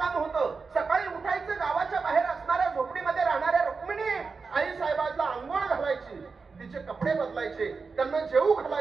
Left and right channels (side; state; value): left; quieter; 4.7 dB